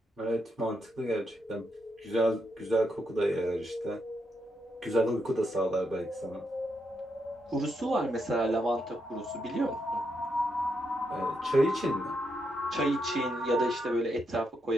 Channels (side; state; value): both; normal; correlation 0.81